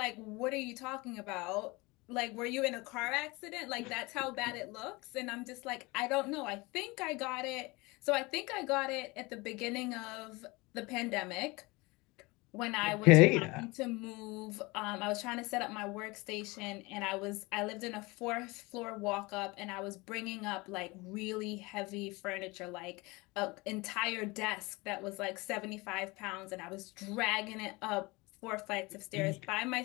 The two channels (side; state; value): right; quieter; 24.2 dB